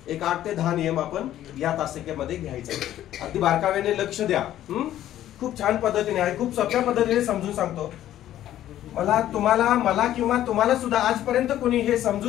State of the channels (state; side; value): quieter; right; 12.5 dB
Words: एक 8 ते 10 नियम आपण या तासिकेमध्ये घ्यायचे. अगदी बारकाव्याने लक्ष द्या. खूप छान पद्धतीने आहे. खूप सोप्या पद्धतीने समजून सांगतो. मला किंवा तुम्हाला सुद्धा आजपर्यंत कोणी हे